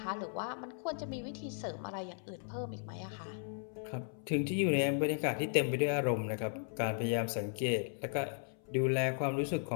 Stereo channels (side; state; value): right; silent; 54 dB below the other